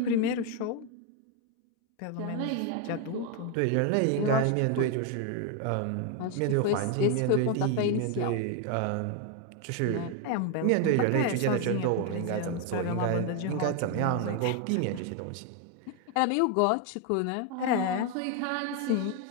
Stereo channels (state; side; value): different; both; correlation 0.01